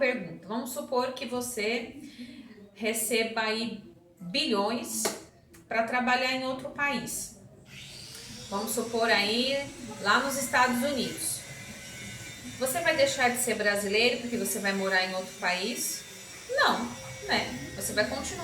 Vamos supor que você receba aí bilhões para trabalhar em outro país. Vamos supor aí lá nos Estados Unidos. Você vai deixar de ser brasileiro porque você vai morar em outro país? Não, né? Você vai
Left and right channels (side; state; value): both; identical; correlation 1.00